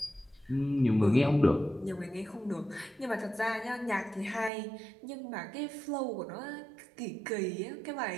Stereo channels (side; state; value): left; drops out; at 4.5 s